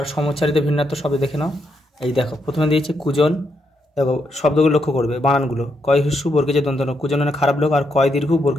সমুচ্চারিত ভিন্নার্থক শব্দ দেখে নাও। এই দেখো প্রথমে দিয়েছে কুজন। দেখো শব্দগুলো লক্ষ্য করবে, বানানগুলো। কয় হিস্যু বর্গেজে দন্তন, কুজন মানে খারাপ লোক, আর কয় দীর্ঘ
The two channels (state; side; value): normal; both; correlation 0.79